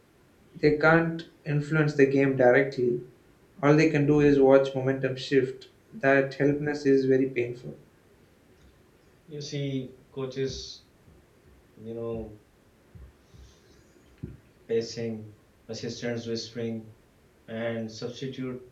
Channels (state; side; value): identical; both; correlation 1.00